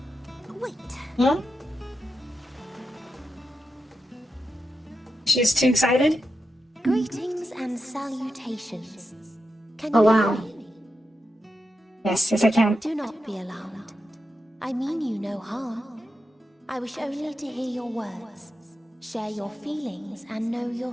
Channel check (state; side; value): normal; both; correlation 0.88